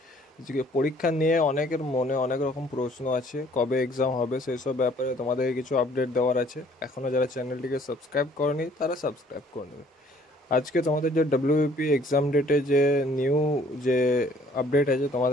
পরীক্ষা নিয়ে অনেকের মনে অনেক রকম প্রশ্ন আছে, কবে এক্সাম হবে সেই সব ব্যাপারে তোমাদের কিছু আপডেট দেওয়ার আছে। এখনও যারা চ্যানেলটিকে সাবস্ক্রাইব করেনি তারা সাবস্ক্রাইব করে নেবে। আজকে তোমাদের যে ডব্লিউবিপি এক্সাম ডেটে যে নিউ যে আপডেট আছে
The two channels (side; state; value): both; normal; correlation 0.58